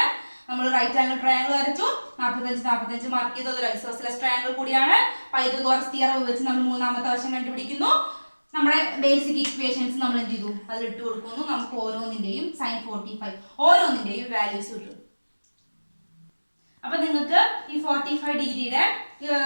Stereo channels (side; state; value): both; inverted; correlation -1.00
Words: നമ്മൾ റൈറ്റ് ആംഗിൾ ട്രയാങ്കിൾ വരച്ചു, 45 മാർക്ക് ചെയ്തത് ഒരു ഐസോസെലസ് ട്രയാങ്കിൾ കൂടിയാണ്. പൈതഗോറസ് തിയറം വെച്ച് നമ്മൾ മൂന്നാമത്തെ വശം കണ്ടുപിടിക്കുന്നു. നമ്മുടെ ബേസിക് ഇക്വേഷൻസ് നമ്മൾ എന്ത് ചെയ്തു, അതിൽ ഇട്ട് കൊടുക്കുന്നു. നമുക്ക് ഓരോന്നിന്റെയും സൈൻ 45 ഓരോന്നിന്റെയും വാല്യൂസ് കിട്ടും. അപ്പൊ നിങ്ങൾക്ക് ഈ 45 ഡിഗ്രിയുടെ